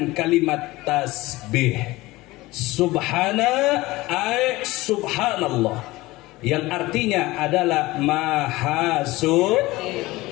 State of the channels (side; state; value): right; quieter; 19.8 dB